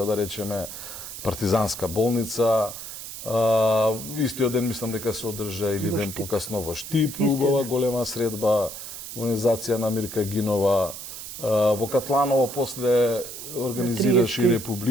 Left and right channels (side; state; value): right; noise; hiss, 10 dB below the sound